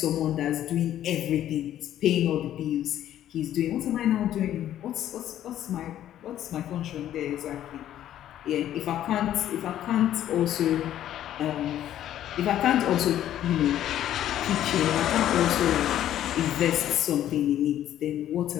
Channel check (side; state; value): right; quieter; 11.8 dB